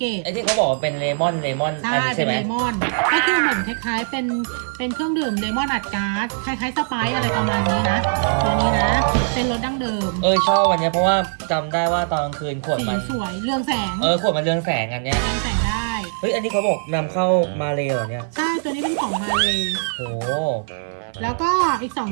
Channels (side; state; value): left; silent; 57 dB below the other